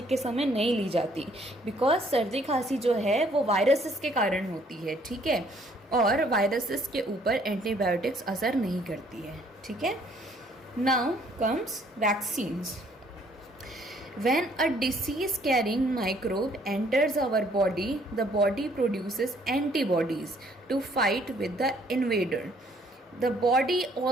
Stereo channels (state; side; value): normal; both; correlation 0.63